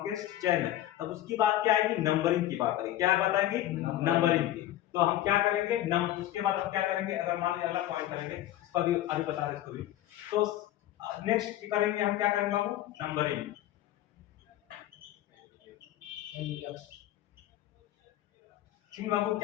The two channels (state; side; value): quieter; right; 13.7 dB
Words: चेन है, तब उसकी बात क्या आएगी, नंबरिंग की बात आएगी, क्या बात आएगी, नंबरिंग की। तो हम क्या करेंगे, उसके बाद हम क्या करेंगे, अगर मान लीजिए अगला पॉइंट करेंगे, इस पर भी आगे बता रहे इसको भी, तो नेक्स्ट करेंगे हम क्या करेंगे बाबू, नंबरिंग, ठीक बाबू,